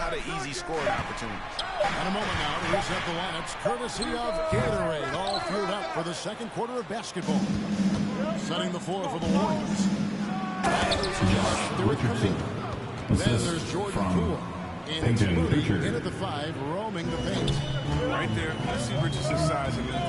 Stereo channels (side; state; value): both; identical; correlation 1.00